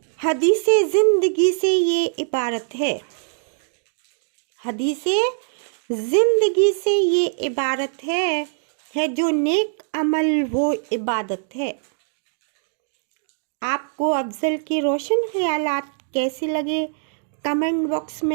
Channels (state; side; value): silent; left; digital silence